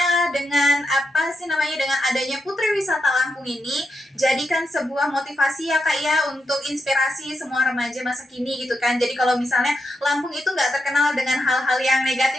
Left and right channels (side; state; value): both; normal; correlation 0.84